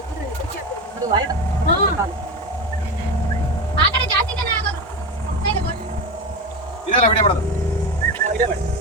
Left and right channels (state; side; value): normal; both; correlation 0.21